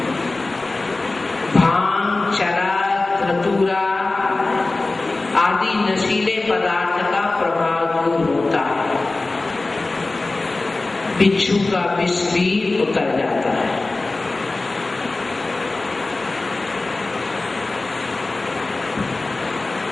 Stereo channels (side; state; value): right; quieter; 3.2 dB